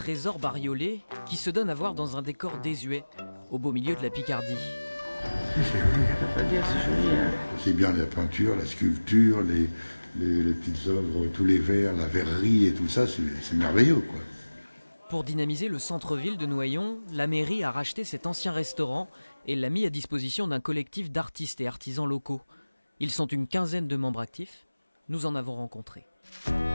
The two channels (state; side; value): inverted; both; correlation -1.00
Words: bariolé qui se donne à voir dans un décor désuet, au beau milieu de la Picardie? C'est joli, on peut pas dire, c'est joli. Hein. C'est bien la peinture, la sculpture, les petites œuvres, tous les verres, la verrerie et tout ça, c'est merveilleux, quoi. Pour dynamiser le centre-ville de Noyon, la mairie a racheté cet ancien restaurant et l'a mis à disposition d'un collectif d'artistes et artisans locaux. Ils sont une quinzaine de membres actifs. Nous en avons rencontré.